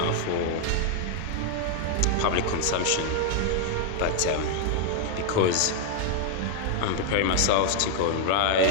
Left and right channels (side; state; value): both; different; correlation 0.00